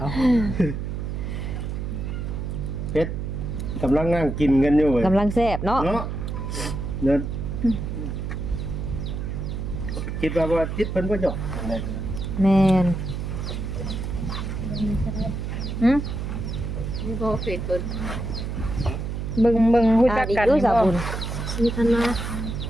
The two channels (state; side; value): noise; right; hum, 4 dB below the sound